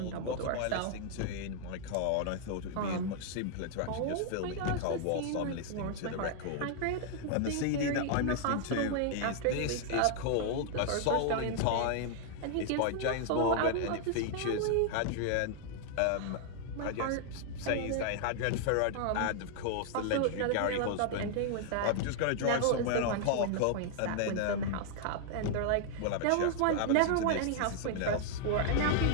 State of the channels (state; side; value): different; both; correlation 0.00